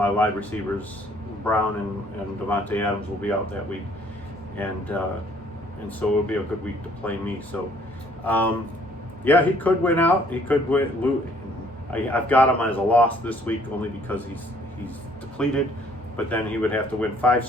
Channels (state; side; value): normal; both; correlation 0.60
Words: wide receivers, Brown and Devontae Adams, will be out that week, and so it'll be a good week to play me. So yeah, he could win out. He could win. I've got him as a loss this week only because he's depleted, but then he would have to win 5